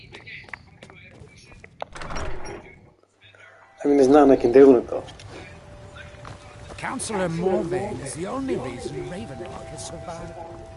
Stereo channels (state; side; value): identical; both; correlation 1.00